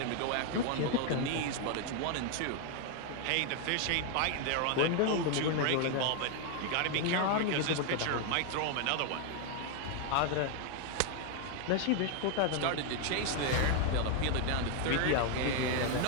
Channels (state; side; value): different; both; correlation 0.00